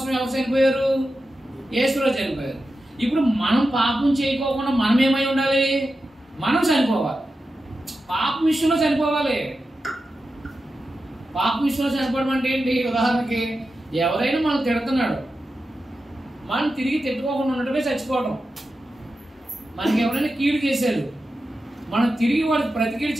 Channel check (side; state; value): both; normal; correlation 0.91